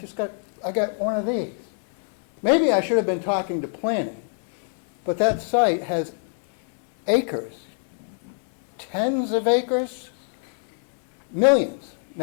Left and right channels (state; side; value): silent; right; digital silence